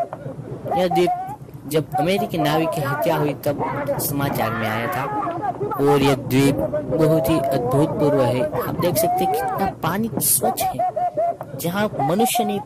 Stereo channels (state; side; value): identical; both; correlation 1.00